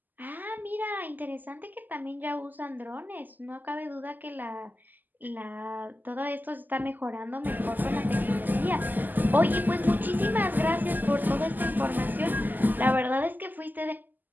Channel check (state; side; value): late; left; 0.086 ms